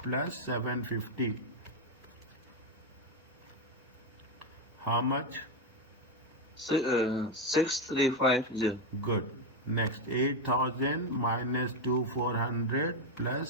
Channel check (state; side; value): normal; both; correlation 0.06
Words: 750. How much? 6,350. Good. Next, 8,000 minus 2,400